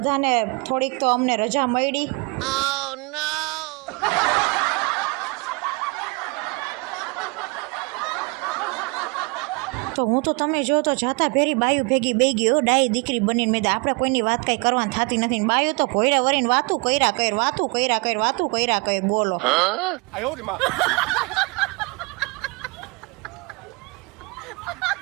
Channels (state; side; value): quieter; left; 29.3 dB